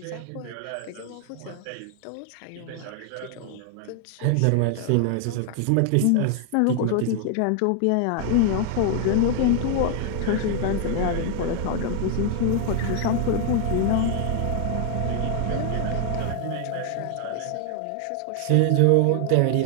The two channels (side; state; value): both; different; correlation 0.00